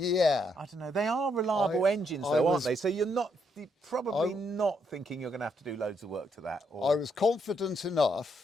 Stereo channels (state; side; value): normal; both; correlation 0.75